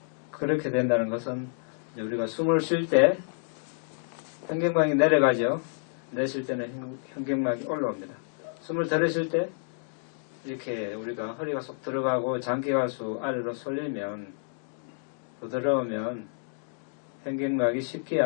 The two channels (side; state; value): right; silent; digital silence